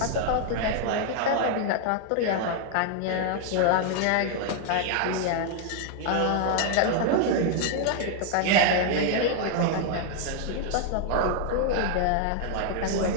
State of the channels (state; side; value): different; both; correlation 0.00